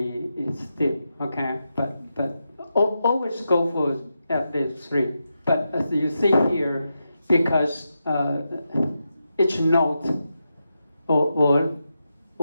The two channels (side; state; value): both; inverted; correlation -0.87